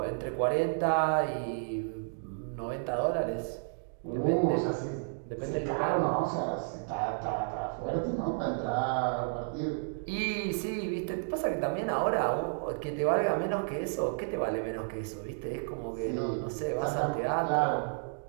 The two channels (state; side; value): silent; left; digital silence